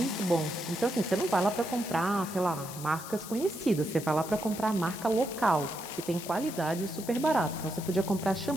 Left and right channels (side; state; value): left; noise; hiss, 12 dB below the sound